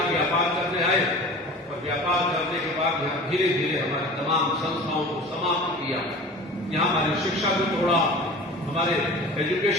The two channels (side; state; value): both; normal; correlation 0.39